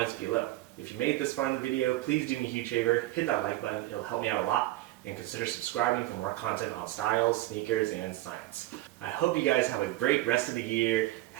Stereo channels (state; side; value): quieter; left; 16.8 dB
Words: below. If you made it this far in the video, please do me a huge favor, hit that like button, it'll help me out a lot, and consider subscribing for more content on styles, sneakers, and science. I hope you guys have a great rest of the year,